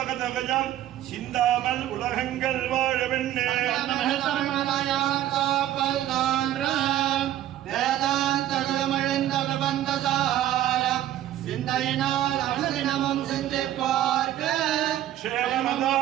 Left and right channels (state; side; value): quieter; left; 12.6 dB